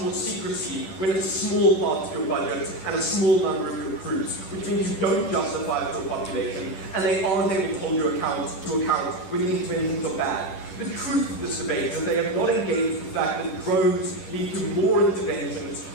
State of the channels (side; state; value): right; late; 10 ms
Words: more secrecy when it's a small part of your budget and a small number of your crews, which means you don't justify it to a population, and they aren't able to hold you to account when the interventions are bad. The truth of this debate is they have not engaged with the fact that drones lead to more interventions